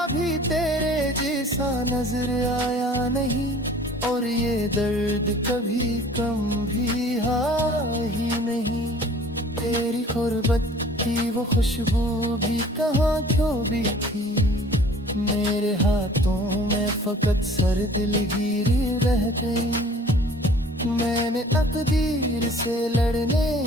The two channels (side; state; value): both; normal; correlation 0.50